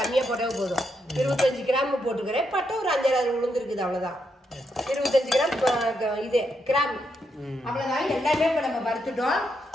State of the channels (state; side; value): normal; both; correlation 0.81